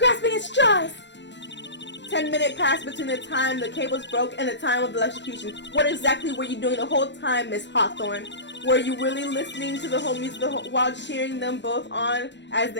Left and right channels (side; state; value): right; late; 0.52 ms